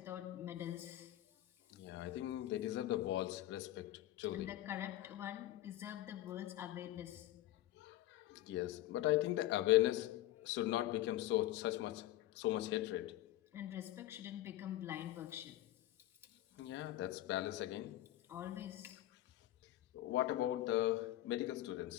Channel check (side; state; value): right; quieter; 14.8 dB